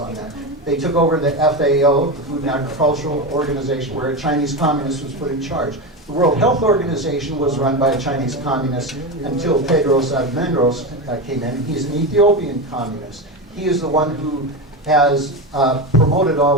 that. They took over the FAO, the Food and Agricultural Organization, where a Chinese communist was put in charge. The World Health Organization was run by a Chinese communist until Tedros Adhanom came in. He's an Ethiopian communist. He is the one who has promoted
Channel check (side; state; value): both; normal; correlation 0.18